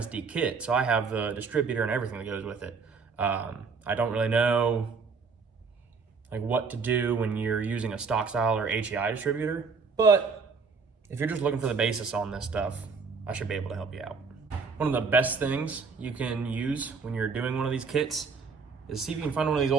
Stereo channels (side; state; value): left; quieter; 5.1 dB